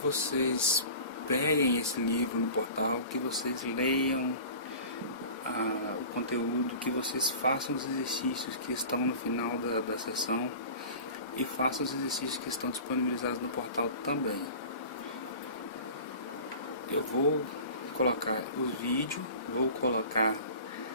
peguem esse livro no portal, que vocês leiam o conteúdo, que vocês façam os exercícios que estão no final da sessão e façam os exercícios que estão disponibilizados no portal também. Eu vou colocar os vídeos, vou colocar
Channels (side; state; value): both; inverted; correlation -0.39